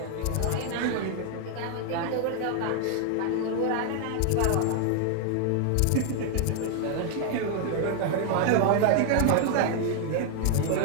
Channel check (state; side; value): different; both; correlation 0.00